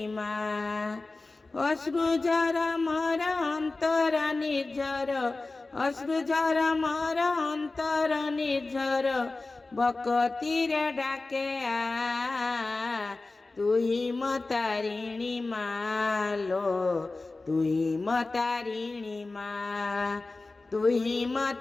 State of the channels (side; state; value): right; quieter; 3.4 dB